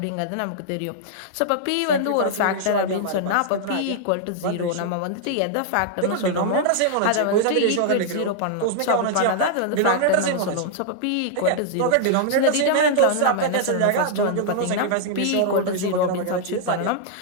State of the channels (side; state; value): both; different; correlation -0.01